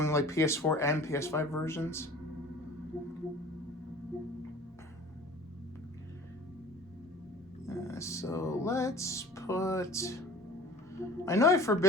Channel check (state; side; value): normal; both; correlation 0.44